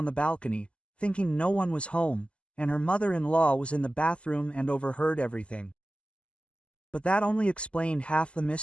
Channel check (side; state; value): right; late; 0.055 ms